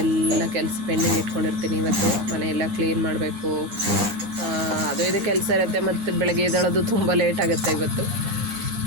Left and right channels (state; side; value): late; left; 9.9 ms